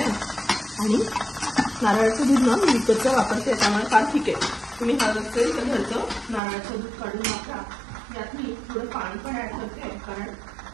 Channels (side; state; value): left; drops out; at 6.4 s